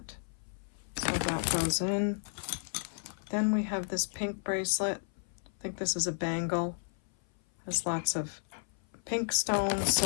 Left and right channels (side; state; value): right; silent; 56 dB below the other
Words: So that goes in. Then we have this pink bracelet. I think this is a bangle. There's lots of pink stones,